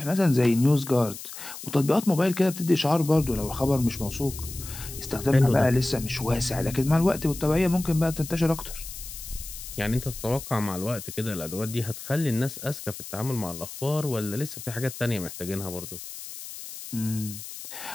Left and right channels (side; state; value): left; noise; hiss, 11 dB below the sound